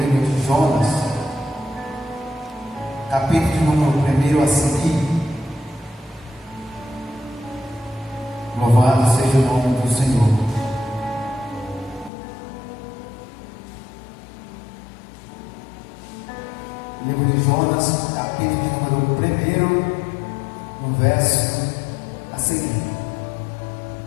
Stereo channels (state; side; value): drops out; right; at 12.1 s